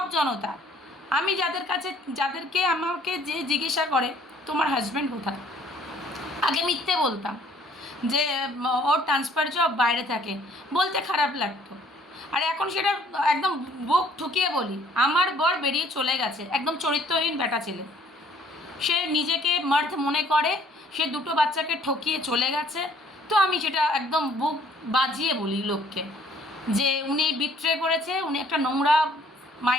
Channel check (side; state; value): both; normal; correlation 0.59